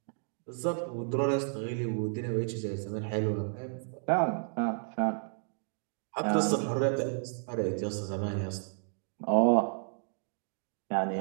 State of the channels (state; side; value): silent; left; 56 dB below the other